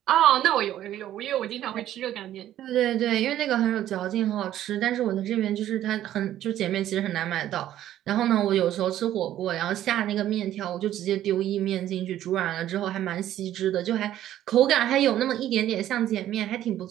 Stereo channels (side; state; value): left; quieter; 12.4 dB